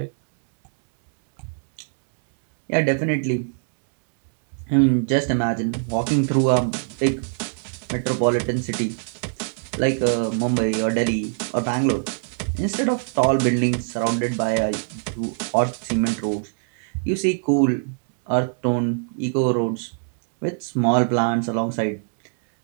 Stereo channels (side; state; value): left; silent; 63 dB below the other